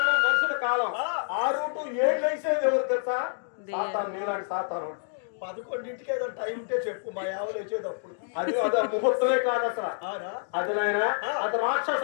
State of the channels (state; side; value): silent; right; digital silence